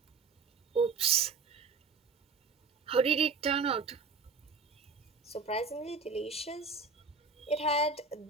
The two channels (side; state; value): left; quieter; 4.6 dB